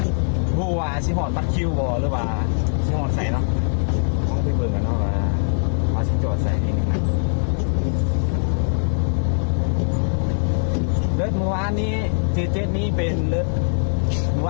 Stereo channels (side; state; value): right; silent; 65 dB below the other